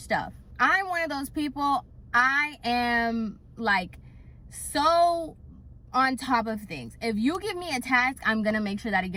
I'm one of those people, I am like so on top of things. If you give me a task, I'm gonna make sure that it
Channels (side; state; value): both; identical; correlation 1.00